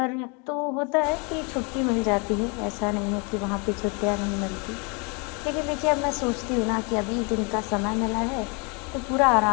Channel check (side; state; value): right; quieter; 32.5 dB